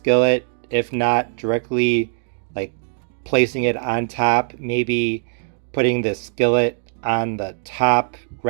If not, directly like placing it on top, maybe putting the skillet on the top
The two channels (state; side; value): silent; left; digital silence